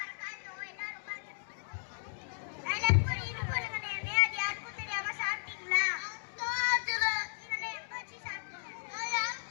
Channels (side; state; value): right; silent; digital silence